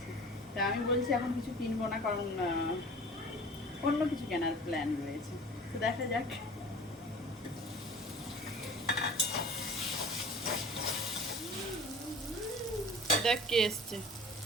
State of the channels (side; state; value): both; normal; correlation 0.43